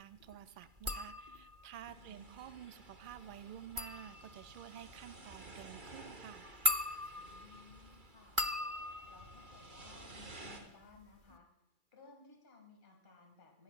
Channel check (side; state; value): left; late; 2.3 ms